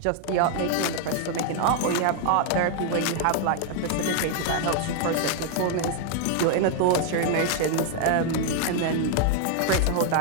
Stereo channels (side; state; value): both; different; correlation 0.00